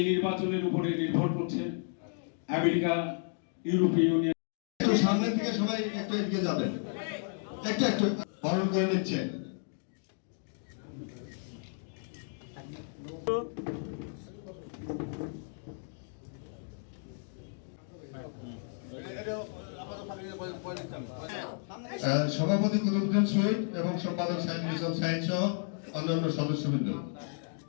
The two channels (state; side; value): silent; right; 56 dB below the other